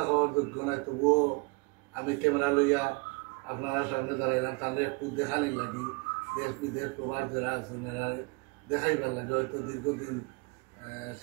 কওয়ার যোগ্য নাই, তবুও আমি ক্যামেরা লইয়া আপনারা সামনে দাঁড়াইলাম। তাহলে একটু দেখানি লাগি, দেশ বিদেশ প্রবাস যারা আছেন এরা দেখাইবার লাগে। হয়তো দীর্ঘদিন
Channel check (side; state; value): left; quieter; 29.0 dB